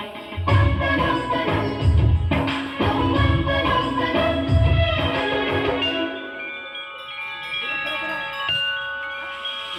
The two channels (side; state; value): both; identical; correlation 1.00